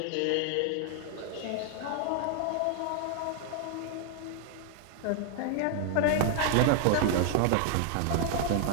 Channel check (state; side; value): different; both; correlation 0.00